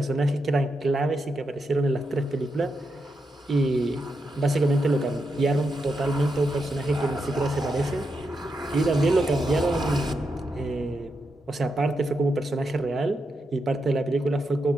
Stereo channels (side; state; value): both; normal; correlation 0.85